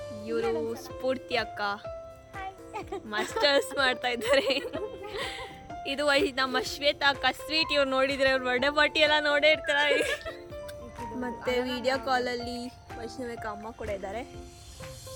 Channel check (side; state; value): both; identical; correlation 1.00